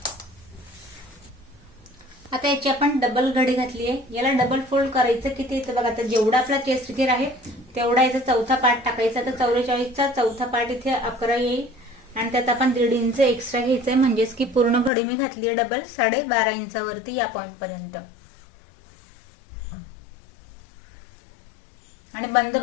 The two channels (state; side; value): drops out; right; at 14.9 s